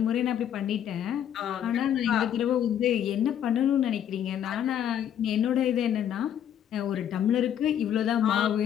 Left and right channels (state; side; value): quieter; right; 9.8 dB